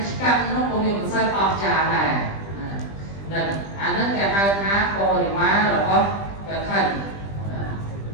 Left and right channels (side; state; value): right; late; 20 ms